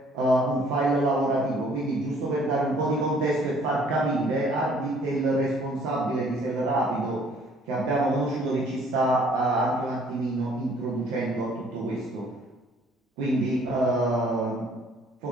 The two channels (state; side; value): normal; both; correlation 0.59